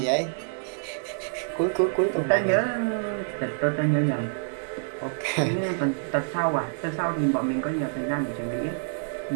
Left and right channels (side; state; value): left; silent; digital silence